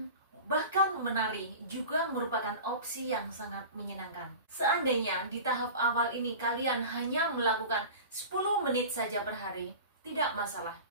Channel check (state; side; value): inverted; both; correlation -0.35